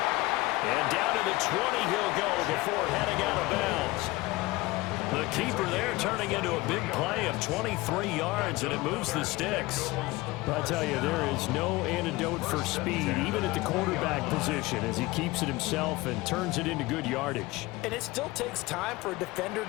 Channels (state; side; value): quieter; right; 20.7 dB